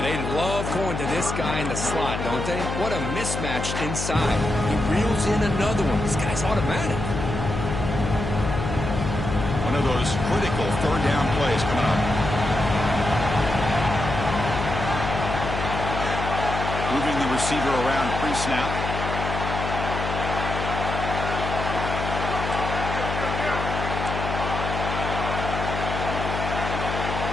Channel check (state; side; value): noise; left; hum, 4 dB below the sound